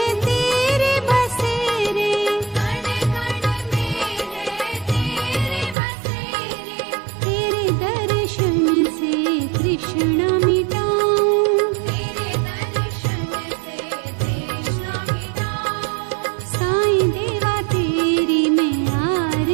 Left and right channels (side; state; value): left; drops out; at 5.8 s